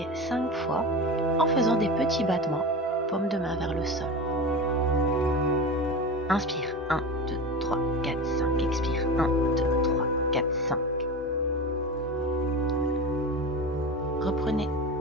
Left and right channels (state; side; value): normal; both; correlation 0.27